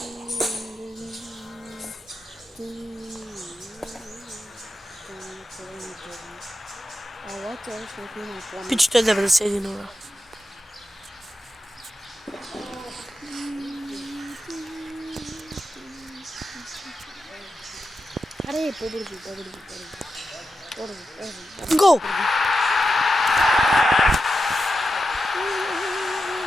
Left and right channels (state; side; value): normal; both; correlation 0.89